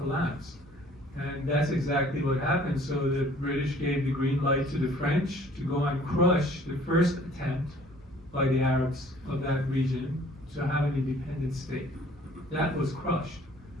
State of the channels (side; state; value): both; normal; correlation 0.55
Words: And that's exactly what happened. So the British gave the green light to the French to go and crush the first attempt by the Arabs of that region to have an independent state. That was crushed.